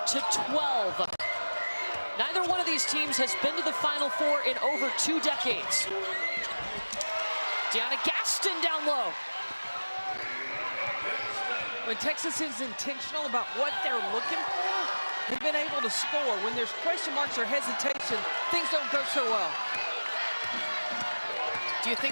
Neither one of these teams has been to the Final Four in over 2 decades. Deanna Gaston down low. When Texas is intentional about what they're looking for, they've been able to score. When there's question marks or hesitation, things don't go so well. Do you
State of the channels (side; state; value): both; inverted; correlation -1.00